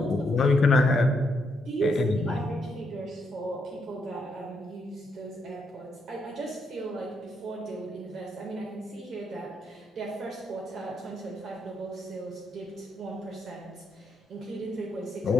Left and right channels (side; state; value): both; normal; correlation 0.77